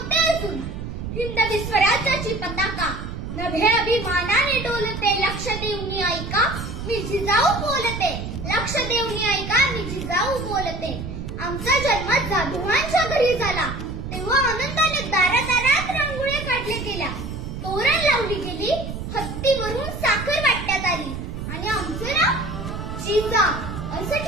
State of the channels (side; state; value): right; noise; rumble, 7 dB below the sound